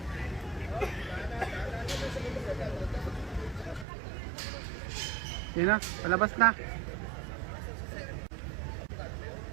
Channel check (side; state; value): left; drops out; at 3.9 s